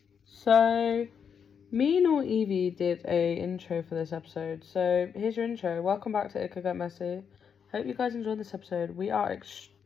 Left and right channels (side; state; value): right; quieter; 7.1 dB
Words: So, me nor Evie did a intro for this episode. So, here's your intro. Welcome back to It Could Get Messy. Hope you guys enjoyed this episode. We are